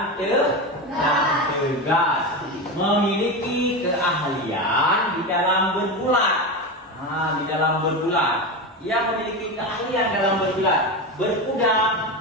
tegas. Memiliki keahlian di dalam bergulat. Ia memiliki keahlian dalam bergulat, berkuda,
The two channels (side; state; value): both; normal; correlation 0.20